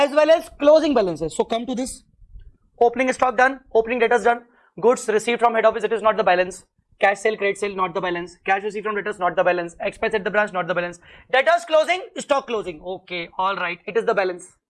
well as closing balances. So, come to this. Opening stock done, opening debtors done, goods received from head office, it is not the balance. Cash sale, credit sale, not the balance. Cash received from debtors, not the balance. Expense at the branch, not the balance. Debtors closing, stock closing. Okay, alright, it is the balance.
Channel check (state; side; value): identical; both; correlation 1.00